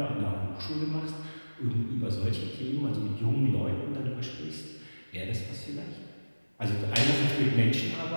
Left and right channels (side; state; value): both; inverted; correlation -1.00